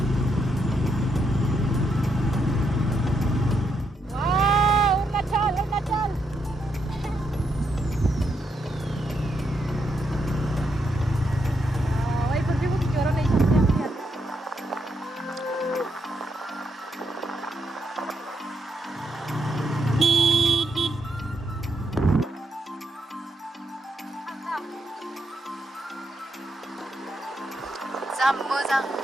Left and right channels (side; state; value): both; normal; correlation 0.79